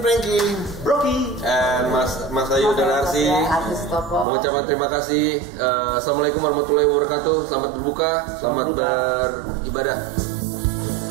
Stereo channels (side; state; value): left; drops out; at 4.2 s